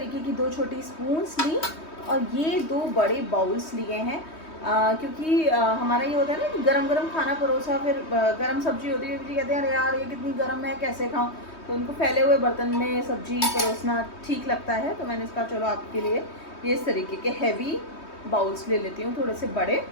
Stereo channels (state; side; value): late; right; 3.2 ms